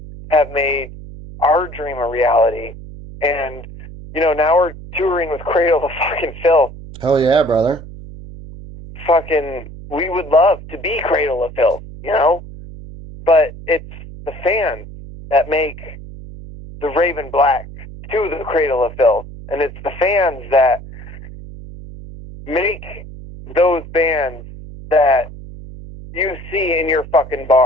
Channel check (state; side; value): noise; right; hum, 14 dB below the sound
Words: have made our dream a reality. And, now we're touring with Cradle of fucking Filth. Hell yeah, brother. Fucking, we would love to be Cradle of Filth, but it's the fans that make the Raven Black to the Cradle of Filth. And it's the fans that make those bands that you see in your fucking